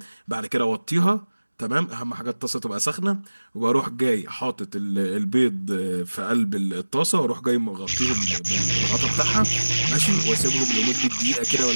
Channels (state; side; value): inverted; both; correlation -1.00